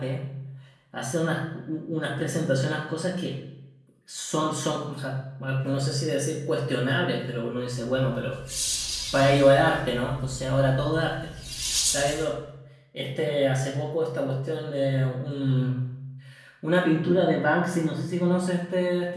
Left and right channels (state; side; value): identical; both; correlation 1.00